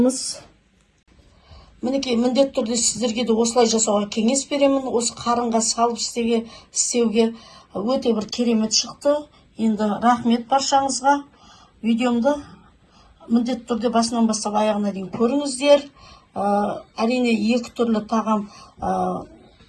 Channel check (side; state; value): both; identical; correlation 1.00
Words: Мінекей міндетті түрде сіздерге де осылай жасауға кеңес беремін. Осы қарынға салып істеуге өте бір керемет шықты. Енді рахмет баршаңызға. Видеомды міндетті түрде басынан бастап аяғына дейін көріңіздер. Әрине екі түрлі тағам